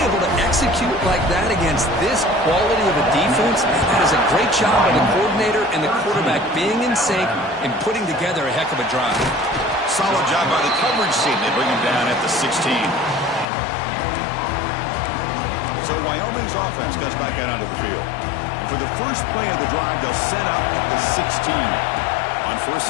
able to execute like that against this quality of a defense. That is a great job by the coordinator and the quarterback being in sync and putting together a heck of a drive. Solid job by the coverage team. They bring him down at the 16. So Wyoming's offense comes back out onto the field. And for the first play of the drive, they'll set up at the 16. On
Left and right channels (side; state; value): right; drops out; at 13.5 s